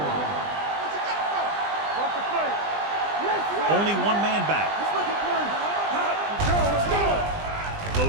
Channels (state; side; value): late; left; 20 ms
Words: Watch the play. Only one man back. Let's go.